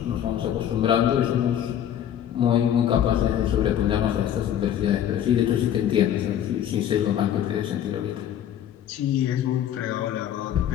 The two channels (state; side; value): quieter; right; 10.3 dB